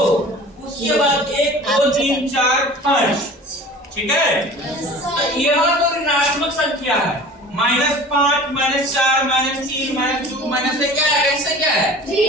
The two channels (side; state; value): both; normal; correlation 0.42